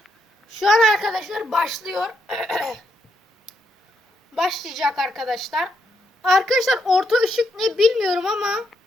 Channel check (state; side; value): normal; both; correlation 0.79